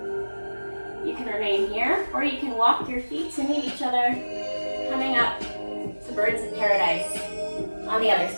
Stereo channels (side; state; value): both; inverted; correlation -1.00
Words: You can remain here or you can walk your feet to meet each other, coming up to birds of paradise on the other